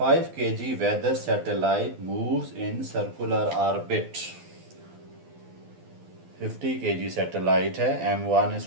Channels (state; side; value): late; left; 12 ms